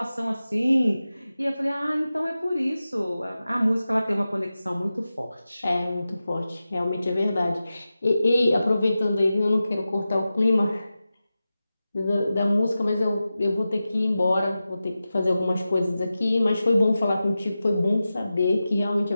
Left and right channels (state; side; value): inverted; both; correlation -0.94